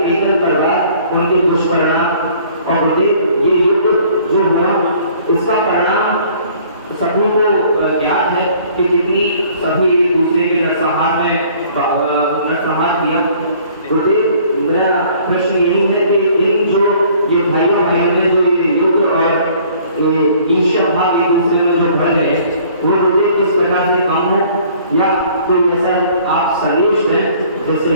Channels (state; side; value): inverted; both; correlation -0.56